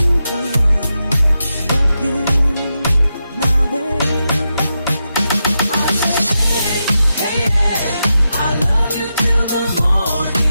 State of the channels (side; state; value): both; inverted; correlation -0.88